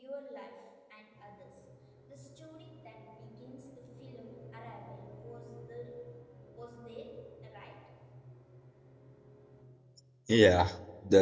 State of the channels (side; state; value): both; identical; correlation 1.00